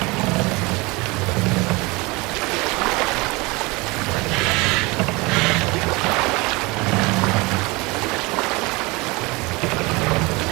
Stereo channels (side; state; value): left; quieter; 24.7 dB